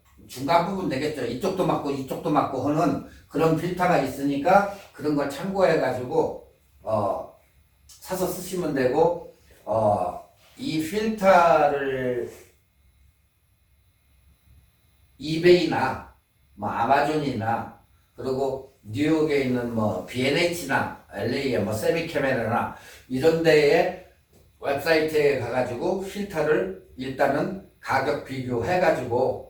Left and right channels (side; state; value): both; identical; correlation 1.00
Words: 중간 부분 되겠죠. 이쪽도 맞고 이쪽도 맞고 하는 그런 필터가 있으니까 그런 걸 참고해가지고 사서 쓰시면 되고 이 필터를 이베이나 뭐 아마존이나 그리고 뉴욕에 있는 뭐 B&H나 LA의 뭐 세미캐메라나 이런 데에 웹사이트에 가가지고 필터를 일단은 가격